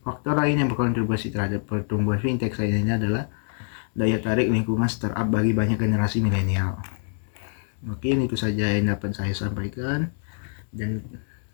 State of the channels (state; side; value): silent; right; 62 dB below the other